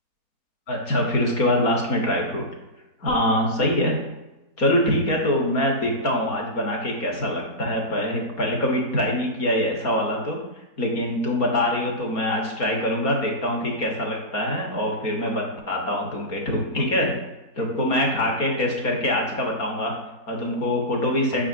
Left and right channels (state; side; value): late; right; 4.2 ms